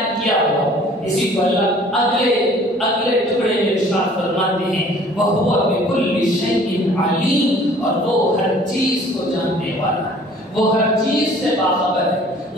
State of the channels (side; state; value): both; normal; correlation 0.53